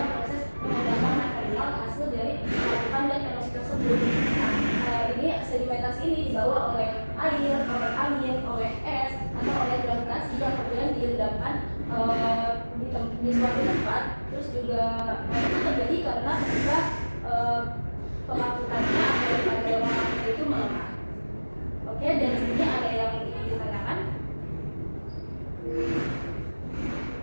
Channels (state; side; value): inverted; both; correlation -1.00